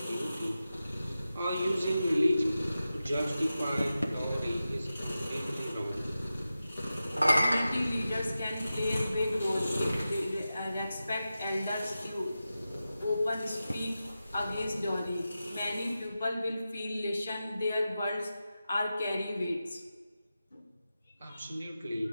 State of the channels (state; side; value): inverted; both; correlation -0.93